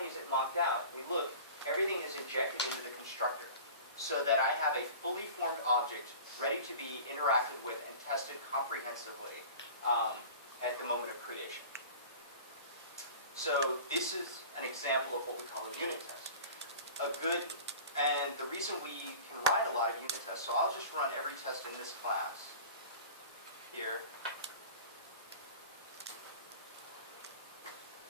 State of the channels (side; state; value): both; inverted; correlation -0.39